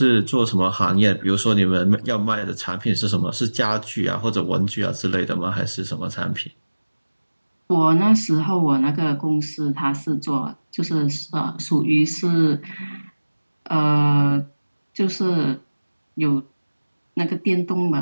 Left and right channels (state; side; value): inverted; both; correlation -1.00